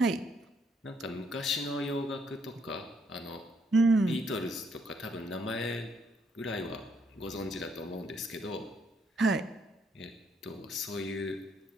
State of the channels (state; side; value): normal; both; correlation 0.72